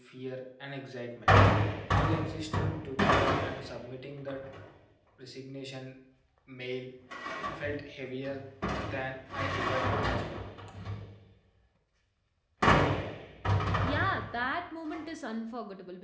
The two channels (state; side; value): identical; both; correlation 1.00